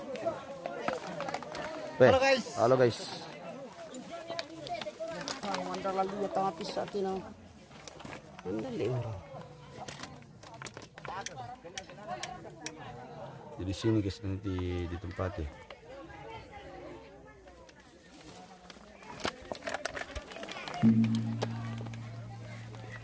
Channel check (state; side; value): identical; both; correlation 1.00